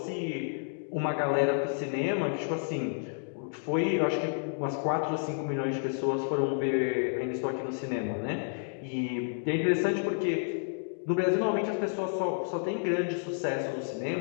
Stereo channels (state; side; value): silent; right; digital silence